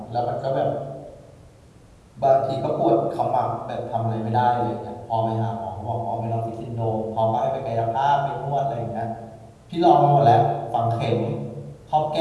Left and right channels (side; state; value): both; identical; correlation 1.00